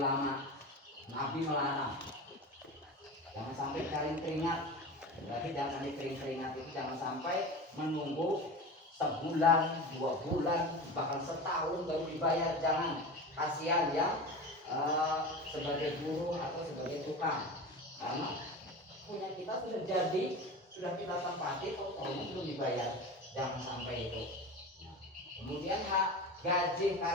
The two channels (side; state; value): both; normal; correlation 0.30